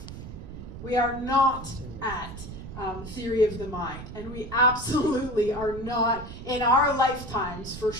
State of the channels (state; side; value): noise; right; rumble, 11 dB below the sound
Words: We are not at theory of the mind. And we absolutely are not, in our lifetimes, for